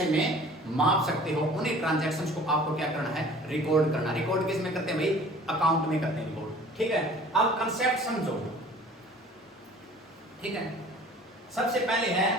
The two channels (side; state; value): both; normal; correlation 0.48